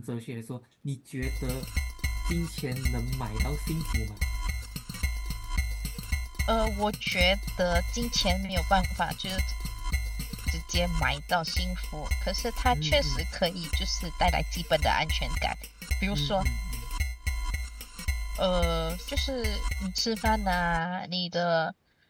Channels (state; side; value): identical; both; correlation 1.00